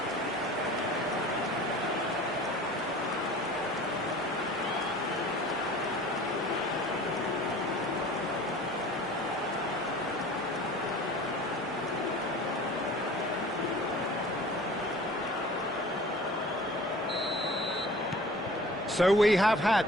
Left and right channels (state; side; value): normal; both; correlation 0.44